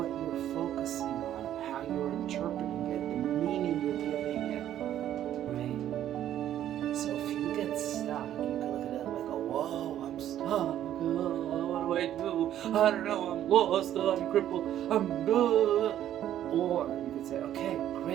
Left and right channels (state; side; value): quieter; left; 11.5 dB